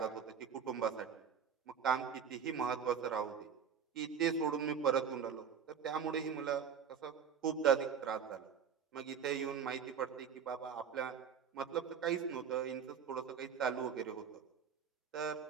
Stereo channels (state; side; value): quieter; left; 7.2 dB